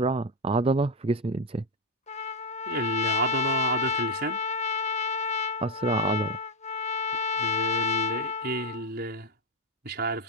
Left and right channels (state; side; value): normal; both; correlation 0.06